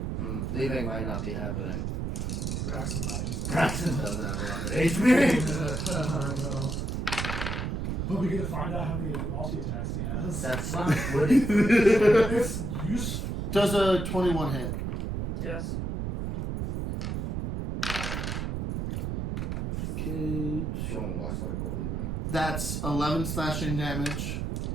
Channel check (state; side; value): noise; right; rumble, 2 dB below the sound